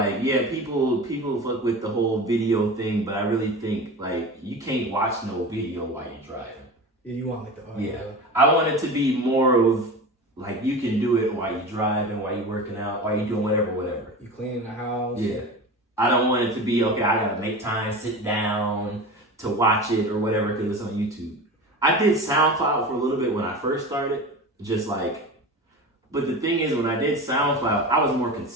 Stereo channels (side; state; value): both; normal; correlation 0.30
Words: yeah, people fuck with the whole video thing, but I really think, like, you can't watch no video while you're driving. Yeah, you want like the audio. Yeah, I want it to be more of, like, you can do it while you're driving, while you're working out, while you're doing whatever. You cleaning the house. Yeah. I don't want it to be, okay, I gotta make time, sit down to watch it or whatever because it's on YouTube. I did SoundCloud for a little bit when I first started, just like, but the thing is, when I did SoundCloud, I was more